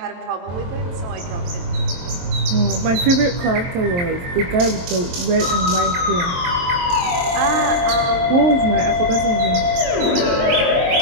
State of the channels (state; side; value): late; left; 23 ms